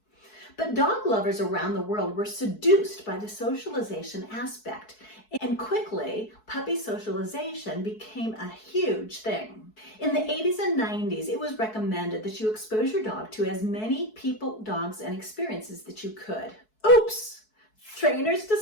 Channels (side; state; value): right; late; 4.6 ms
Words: But dog lovers around the world were seduced by the socialization aspect, and quickly, puppy socialization became a huge thing. In the 80s and 90s, it was recommended that you expose your dog to as many people, dogs, and experiences that you could. Oops! Trainers